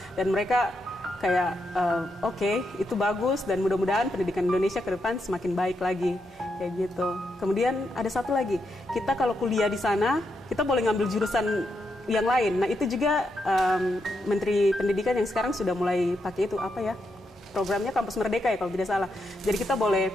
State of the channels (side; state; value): both; normal; correlation 0.82